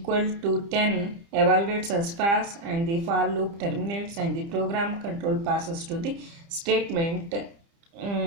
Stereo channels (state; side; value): late; left; 30 ms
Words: to 10 evaluates as false, and the for loop terminates, and the program control passes to the statement